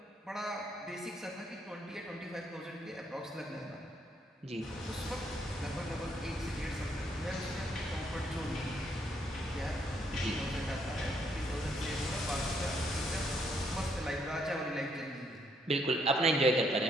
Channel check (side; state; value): both; normal; correlation 0.72